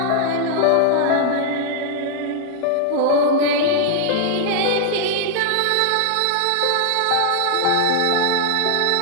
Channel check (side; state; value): both; different; correlation 0.00